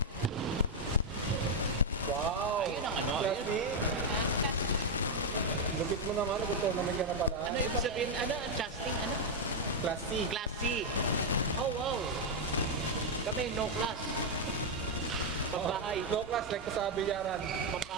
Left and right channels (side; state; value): both; normal; correlation 0.00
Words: Wow. Ayun ang ano, Classy. Ha? Kasi Lupit mo naman. Gusto naman ka na pala. Ano ibig sabihin, ano, adjusting, ano? Classy. Classy. Oh, wow. Kami, no class. Pabahay. No class like ko sa bilyaran.